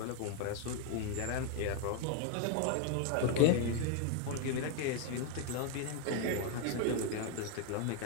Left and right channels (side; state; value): both; different; correlation 0.01